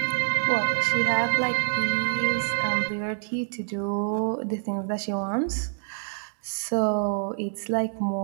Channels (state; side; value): silent; left; digital silence